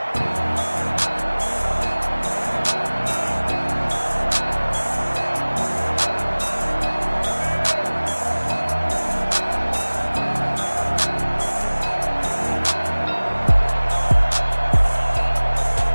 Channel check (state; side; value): inverted; both; correlation -1.00